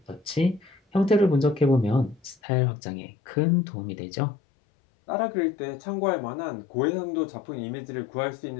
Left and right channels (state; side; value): drops out; right; at 2.4 s